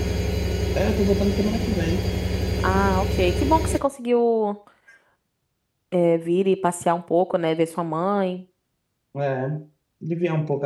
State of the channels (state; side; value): identical; both; correlation 1.00